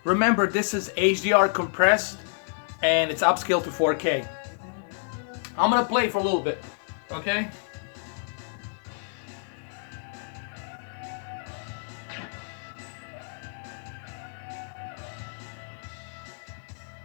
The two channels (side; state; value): right; silent; digital silence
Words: remember, this is HDR compressed and it's upscaled to 4K. I'm gonna play for a little bit, okay?